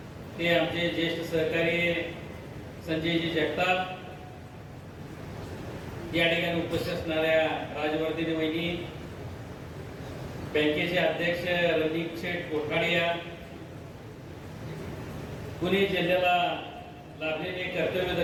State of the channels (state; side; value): identical; both; correlation 1.00